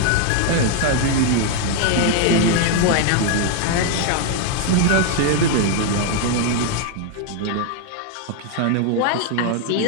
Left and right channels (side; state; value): both; different; correlation 0.00